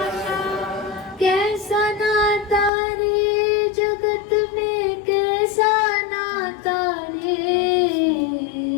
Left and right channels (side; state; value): right; drops out; at 2.7 s